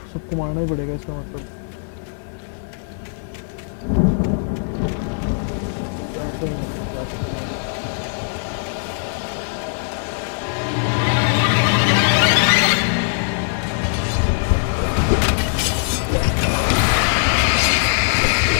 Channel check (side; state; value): right; silent; 56 dB below the other